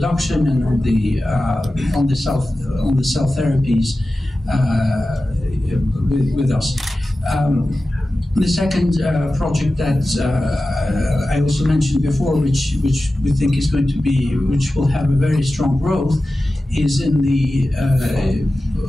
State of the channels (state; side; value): normal; both; correlation 0.94